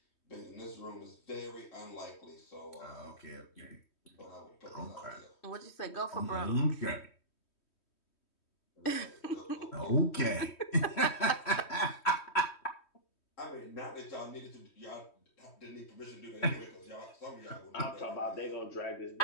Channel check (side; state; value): right; late; 3.1 ms